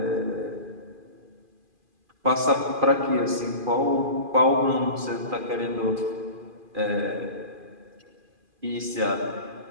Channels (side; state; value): left; late; 2.4 ms